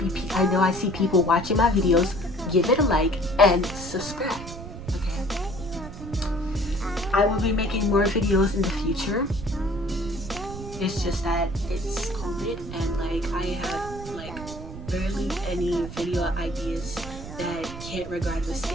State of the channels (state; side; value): noise; right; rumble, 11 dB below the sound